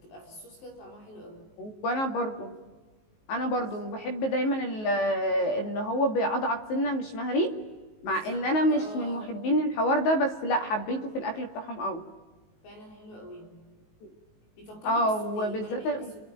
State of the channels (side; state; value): right; late; 19 ms